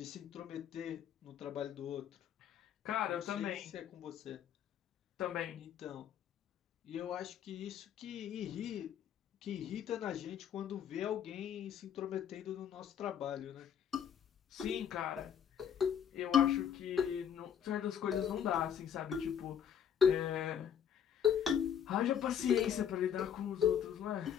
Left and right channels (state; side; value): quieter; right; 8.6 dB